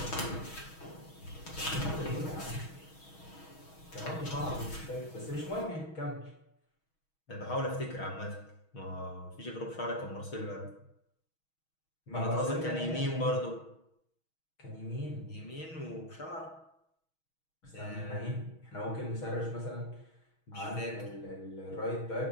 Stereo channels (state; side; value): late; right; 6.3 ms